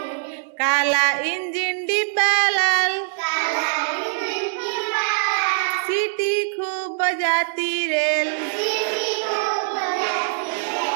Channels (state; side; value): silent; left; digital silence